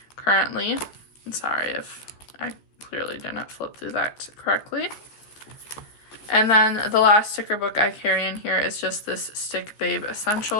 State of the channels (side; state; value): right; late; 14 ms